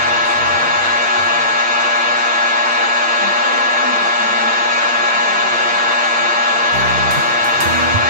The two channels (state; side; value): late; left; 8.7 ms